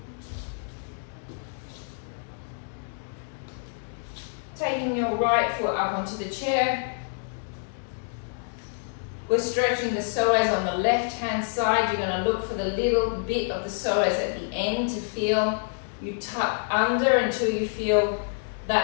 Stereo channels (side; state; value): right; silent; digital silence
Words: Taking your right foot up onto the chair. We're stretching the psoas on the left hand side. You're going to look for the little bit of the psoas at the end to feel. You tuck under until you feel